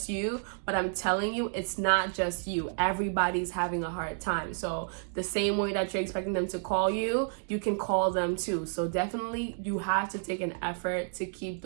you. But I'm telling you, it's not just you. Everybody's having a hard time. So the same way that you're expecting them to call you, you can call them too. So definitely you have to take an effort to keep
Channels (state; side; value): silent; left; 57 dB below the other